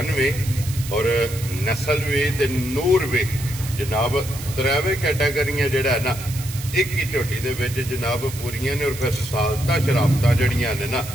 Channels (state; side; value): noise; right; hiss, 12 dB below the sound